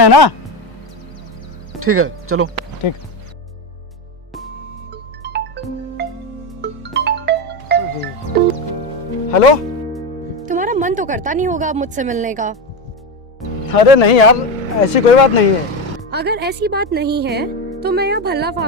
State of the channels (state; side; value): normal; both; correlation 0.16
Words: ना। ठीक है चलो। ठीक। हेलो। तुम्हारा मन तो करता नहीं होगा अब मुझसे मिलने का। अरे नहीं यार, ऐसी कोई बात नहीं है। अगर ऐसी बात नहीं है तो मैं यहाँ भल्ला